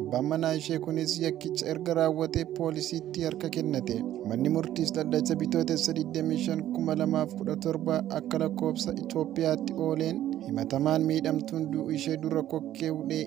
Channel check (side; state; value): left; quieter; 12.6 dB